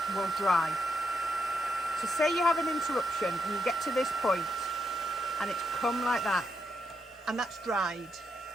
will dry. So say you have an interruption and you get to this point and it's come like that and that's dried.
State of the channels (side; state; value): both; normal; correlation 0.82